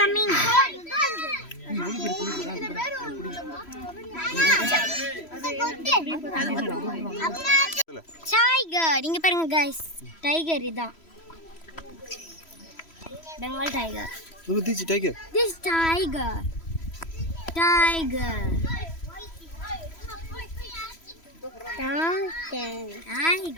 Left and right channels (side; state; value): right; late; 3.0 ms